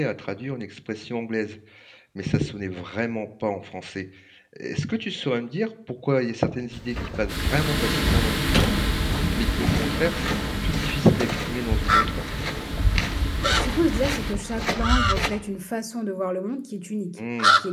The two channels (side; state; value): both; identical; correlation 1.00